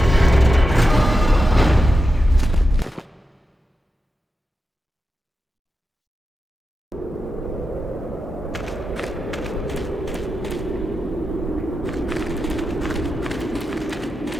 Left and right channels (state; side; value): normal; both; correlation 0.90